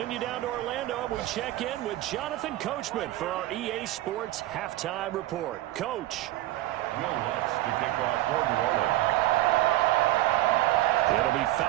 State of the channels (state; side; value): quieter; left; 16.1 dB